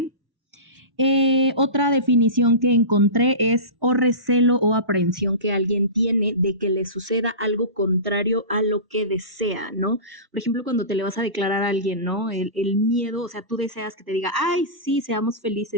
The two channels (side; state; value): left; late; 1.1 ms